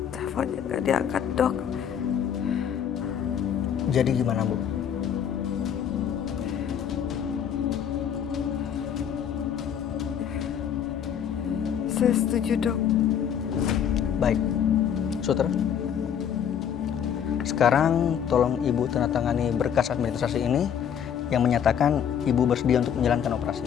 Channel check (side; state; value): right; quieter; 8.6 dB